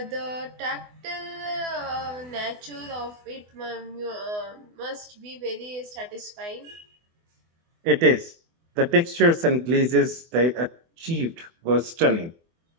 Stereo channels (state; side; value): late; left; 24 ms